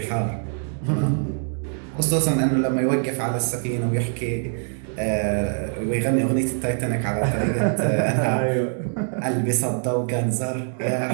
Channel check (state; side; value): silent; left; 63 dB below the other